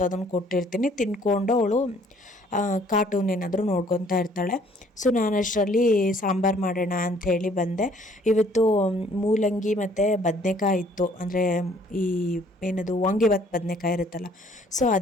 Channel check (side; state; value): both; normal; correlation 0.60